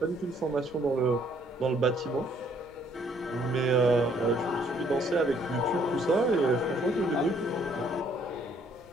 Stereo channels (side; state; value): right; noise; rumble, 30 dB below the sound